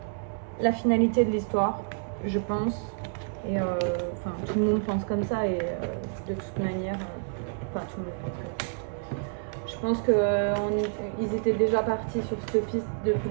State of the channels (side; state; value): left; silent; digital silence